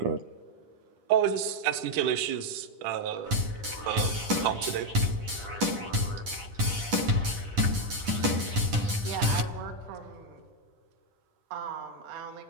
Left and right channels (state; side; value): late; left; 10 ms